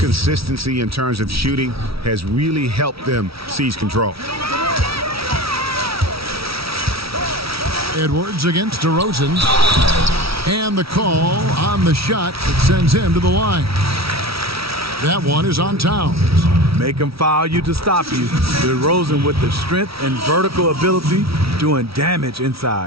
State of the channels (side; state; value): left; late; 0.76 ms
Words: in terms of shooting has really helped them seize control. Edwards against DeRozan. And the call on the shot that sends him to the line. That one is on Towns. Make him foul you to stop you. DeRozan with the strength and vertical ability doing damage